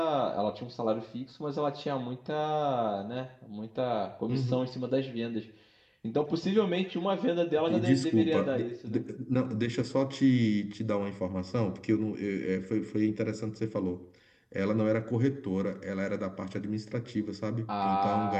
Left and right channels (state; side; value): identical; both; correlation 1.00